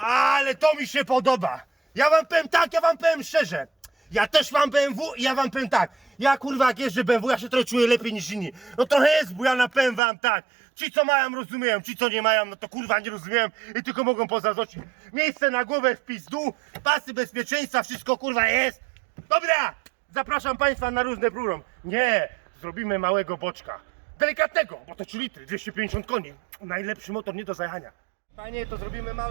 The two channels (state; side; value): drops out; left; at 10.0 s